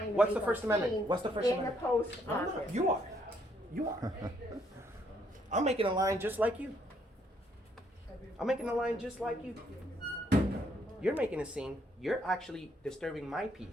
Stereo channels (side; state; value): both; normal; correlation 0.70